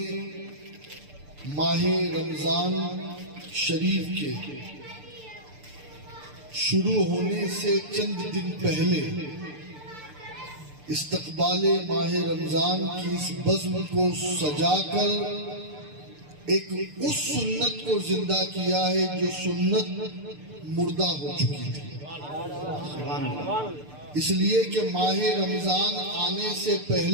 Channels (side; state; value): left; late; 6.8 ms